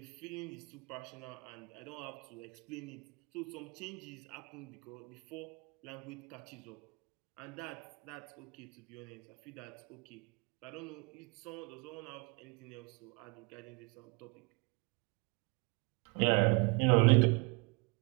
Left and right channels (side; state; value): left; quieter; 30.2 dB